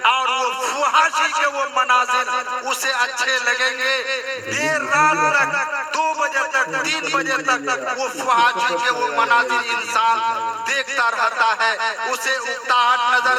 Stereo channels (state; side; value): identical; both; correlation 1.00